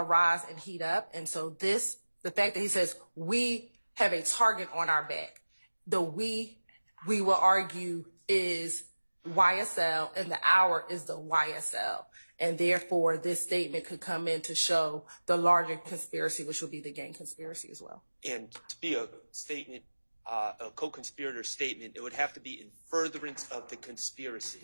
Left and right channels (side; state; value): both; inverted; correlation -1.00